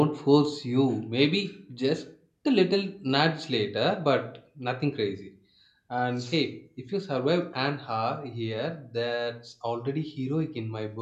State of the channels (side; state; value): both; identical; correlation 1.00